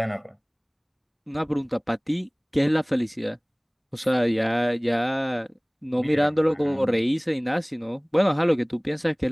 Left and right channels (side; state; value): both; identical; correlation 1.00